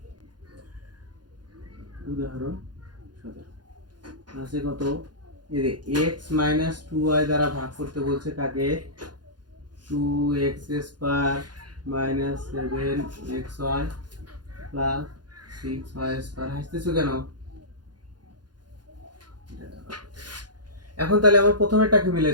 উদাহরণ 17 আছে কত, এই যে x - 2y দ্বারা ভাগ করতে বলছে কাকে? 2x² - 7xy + 6y²। হাসতেছো কেন? এখন তাহলে আমার প্রথমেরটাকে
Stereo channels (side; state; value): left; late; 0.70 ms